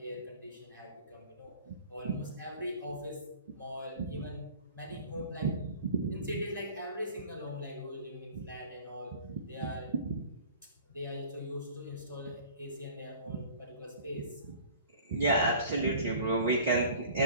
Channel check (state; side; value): inverted; both; correlation -0.46